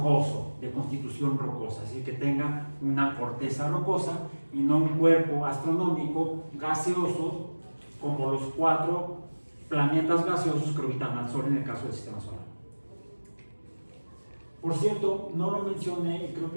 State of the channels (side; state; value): both; inverted; correlation -1.00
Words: de constitución rocosa, es decir, que tenga una corteza rocosa y no un cuerpo astronómico gaseoso como los 4 planetas gaseosos que orbitan al Sol en el caso del sistema solar. Por cierto, no lo mencioné y creo